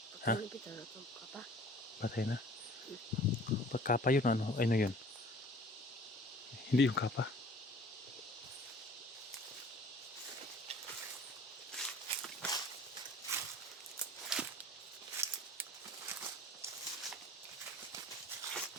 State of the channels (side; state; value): both; normal; correlation 0.49